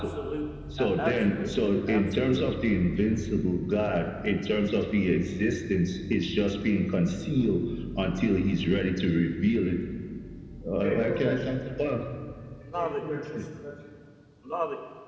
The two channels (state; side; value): identical; both; correlation 1.00